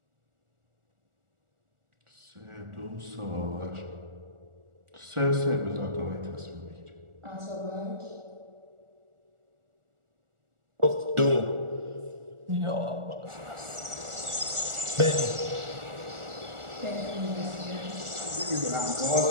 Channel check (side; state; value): left; late; 1.4 ms